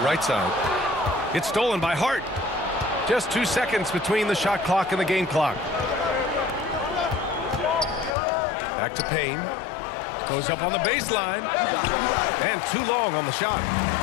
right side. It's stolen by Hart. Just 2 seconds between the shot clock and the game clock. Back to Payne. Goes up on the baseline. And too long on the shot.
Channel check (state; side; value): drops out; right; at 8.2 s